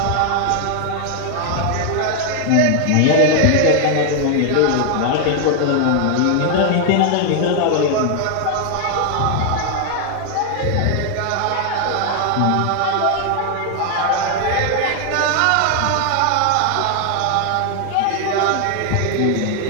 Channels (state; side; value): different; both; correlation 0.00